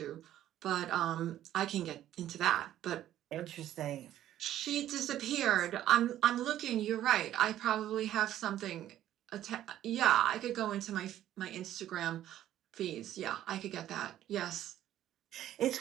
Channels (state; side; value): quieter; left; 12.4 dB